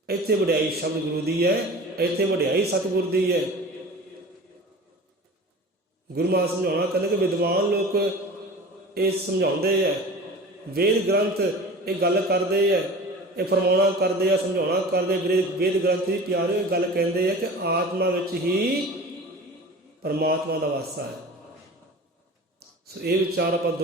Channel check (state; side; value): normal; both; correlation 0.38